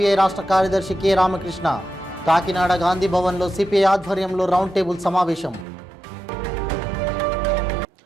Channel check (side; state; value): left; drops out; at 5.7 s